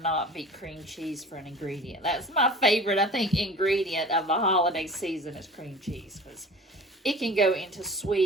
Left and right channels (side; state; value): both; normal; correlation 0.41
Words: beat cream cheese for an ingredient. That's my favorite, I think, ingredient of the holiday season is cream cheese, because it can go into